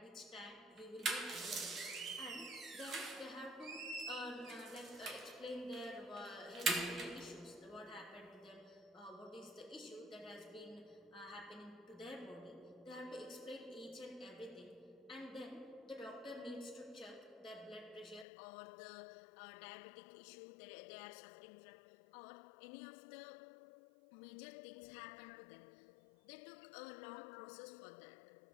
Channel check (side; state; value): right; drops out; at 18.2 s